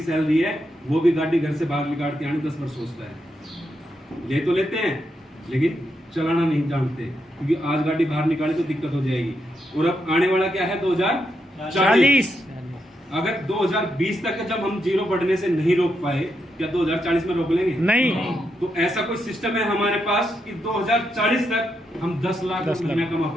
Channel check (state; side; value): normal; both; correlation 0.82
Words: सैलरी है, वो भी गाड़ी घर से बाहर निकाल के आने 10 बार सोचता है। ले तो लेते हैं लेकिन चलाना नहीं जानते, क्योंकि आज गाड़ी बाहर निकाले तो दिक्कत हो जाएगी। और अब आने वाला क्या है? 2040। अगर 2020 तक जब हम जीरो बढ़ने से नहीं रोक पाए, क्या 2040 में रोक लेंगे? नहीं। तो ऐसा कोई सिस्टम है हमारे पास कि 2040 तक हम 10 लाख महीना कमा